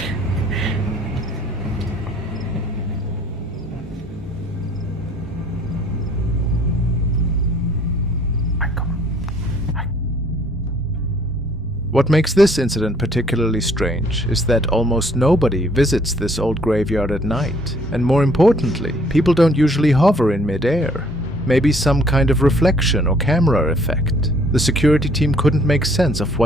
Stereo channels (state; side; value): normal; both; correlation 0.60